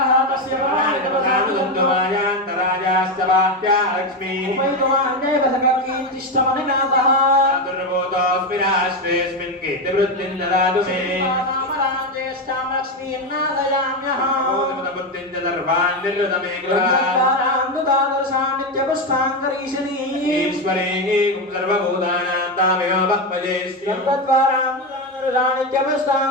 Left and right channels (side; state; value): both; normal; correlation 0.12